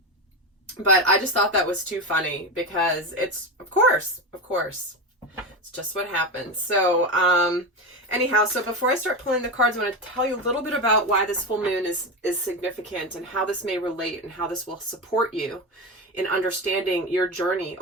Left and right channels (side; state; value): both; normal; correlation 0.18